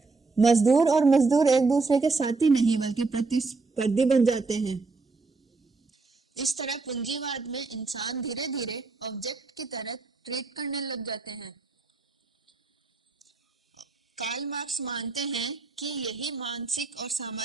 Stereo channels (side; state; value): left; quieter; 3.9 dB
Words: मजदूर और मजदूर एक दूसरे के साथी नहीं बल्कि प्रतिस्पर्धी बन जाते हैं। इस तरह पूंजीवाद में इंसान धीरे धीरे ऑब्जेक्ट की तरह ट्रीट करने लग जाते हैं। कार्ल मार्क्स मानते हैं कि यही मानसिक और